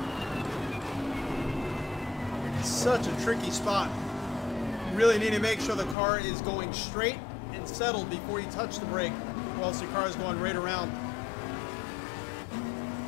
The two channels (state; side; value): drops out; right; at 6.0 s